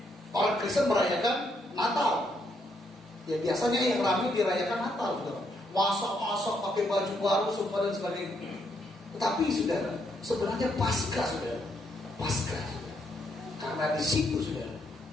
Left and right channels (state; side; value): normal; both; correlation 0.75